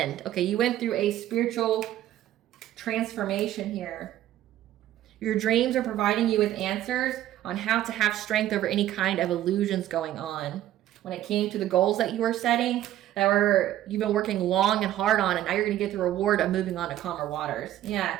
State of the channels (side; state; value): left; quieter; 13.0 dB